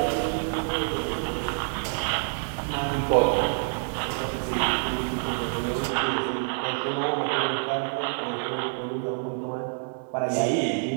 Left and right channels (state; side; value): silent; left; digital silence